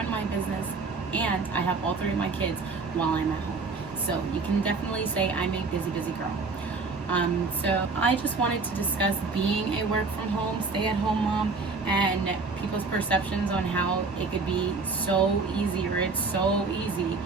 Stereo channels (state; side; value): quieter; left; 4.2 dB